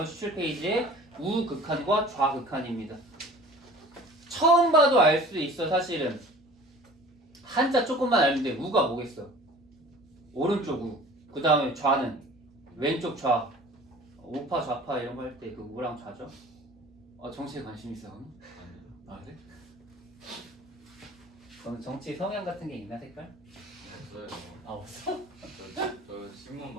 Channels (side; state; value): both; normal; correlation 0.45